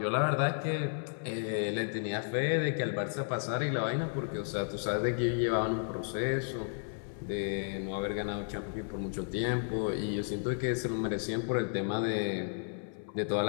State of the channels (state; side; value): silent; right; 56 dB below the other